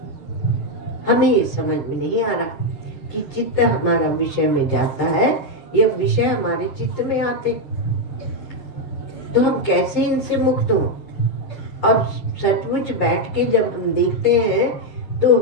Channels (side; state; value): right; late; 6.5 ms